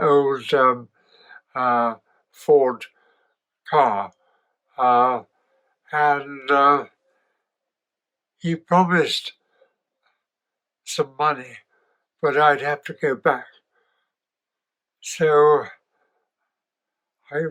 Ford car. And he promised some money, but I'd have to go back. So I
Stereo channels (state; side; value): identical; both; correlation 1.00